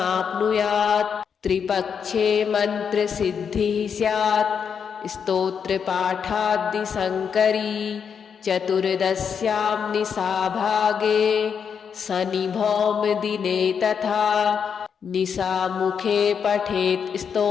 त्रिपक्षे मन्त्रसिद्धिः स्यात् स्तोत्रपाठाद्दिशङ्करी चतुर्दश्यां निशाभागे शनिभौमदिने तथा निशामुखे पठेत्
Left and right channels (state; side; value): quieter; right; 6.9 dB